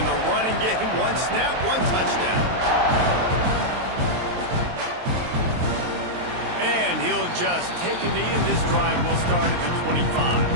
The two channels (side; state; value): left; late; 23 ms